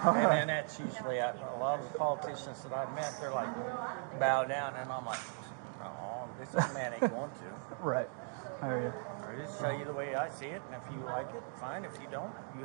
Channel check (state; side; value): silent; left; 52 dB below the other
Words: And that's usually a lot of the politicians that I've met, they're like, bow down. And I'm like, oh, this man ain't going to. Right. I hear you. I just tell you the way I see it. And if you like it, fine. If you don't, you